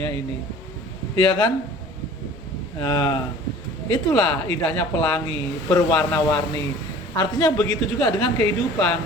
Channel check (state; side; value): noise; left; rumble, 22 dB below the sound